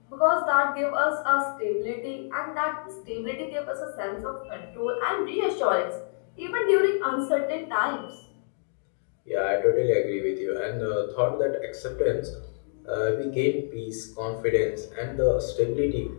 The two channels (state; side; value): silent; right; digital silence